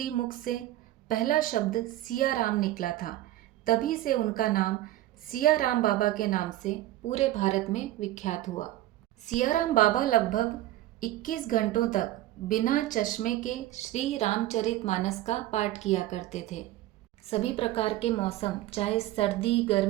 से पहला शब्द सियाराम निकला था। तभी से उनका नाम सियाराम बाबा के नाम से पूरे भारत में विख्यात हुआ। सियाराम बाबा लगभग 21 घंटों तक बिना चश्मे के श्री रामचरितमानस का पाठ किया करते थे। सभी प्रकार के मौसम, चाहे सर्दी,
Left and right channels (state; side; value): quieter; left; 14.9 dB